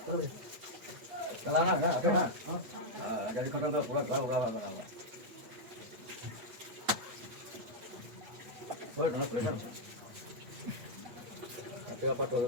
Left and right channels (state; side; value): late; left; 8.2 ms